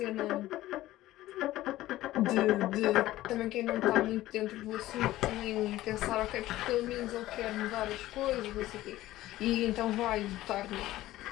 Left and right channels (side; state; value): right; quieter; 15.8 dB